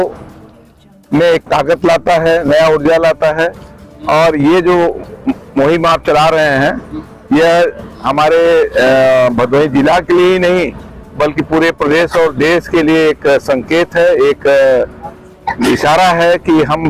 में एक ताकत लाता है, नया ऊर्जा लाता है। और ये जो मुहिम आप चला रहे हैं यह हमारे भदोही जिला के लिए ही नहीं बल्कि पूरे प्रदेश और देश के लिए एक संकेत है, एक इशारा है कि हम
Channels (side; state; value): both; identical; correlation 1.00